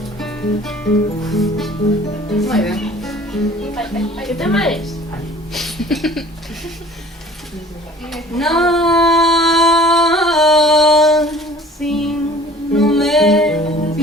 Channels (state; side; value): normal; both; correlation 0.48